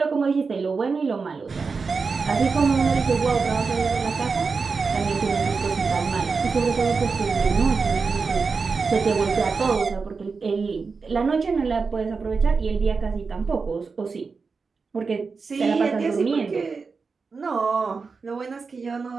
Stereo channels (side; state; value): left; quieter; 4.7 dB